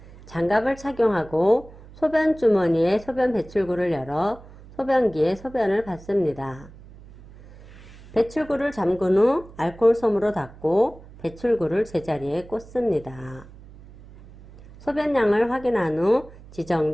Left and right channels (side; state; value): right; noise; hum, 20 dB below the sound